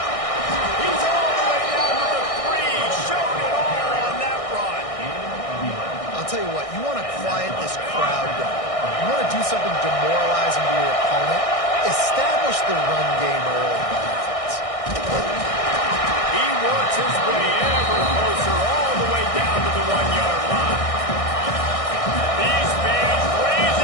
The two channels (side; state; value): right; late; 1.6 ms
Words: He's all the way down to the 3. Showed it all on that run. I'll tell you what, you want to quiet this crowd down. You want to do something demoralizing to your opponent. Establish the run game early in the defense. He works his way ever closer all the way down to the 1-yard line. These fans